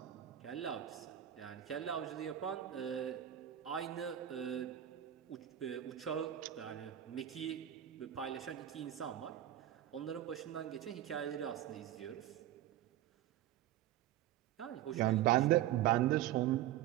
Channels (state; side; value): quieter; left; 12.3 dB